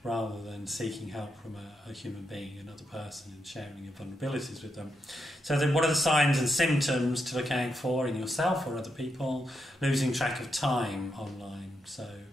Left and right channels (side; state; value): both; normal; correlation 0.84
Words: rather than seeking help from a human being, another person, and sharing your vulnerabilities with them. So then what are the signs and symptoms to look out for in yourself or other people? Losing track of time online, so